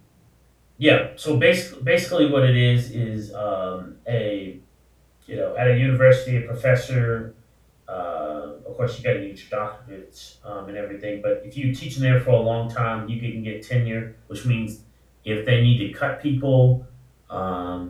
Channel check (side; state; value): both; identical; correlation 1.00